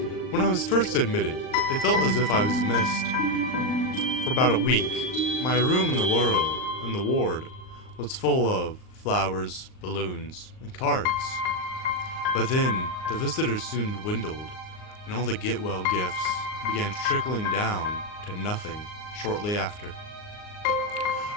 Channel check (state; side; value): late; right; 39 ms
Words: When I was first admitted, it felt as if I was missed. For about a week, my room in the ward was full of flowers, balloons, and cards. But then, the visitors soon dwindled, and all the get-well gifts began trickling down to nothing shortly after.